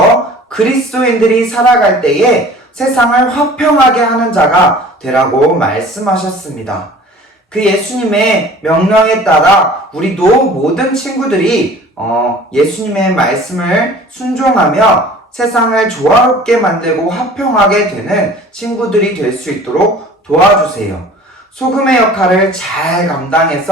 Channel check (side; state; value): both; normal; correlation 0.46